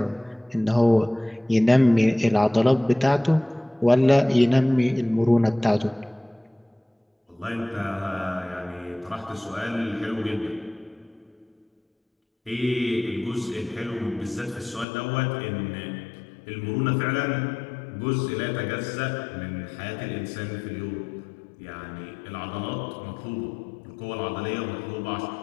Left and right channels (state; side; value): drops out; right; at 14.9 s